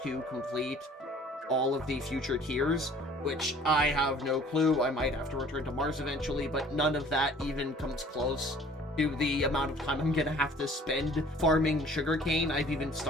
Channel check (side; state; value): both; normal; correlation 0.52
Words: to complete all of the future tiers? Which I have no clue. I might have to return to Mars eventually, but none of that even comes close to the amount of time I'm gonna have to spend farming sugarcane. I've even